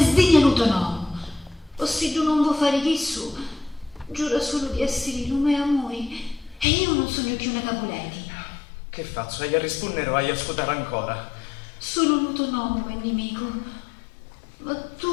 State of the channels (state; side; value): drops out; right; at 6.7 s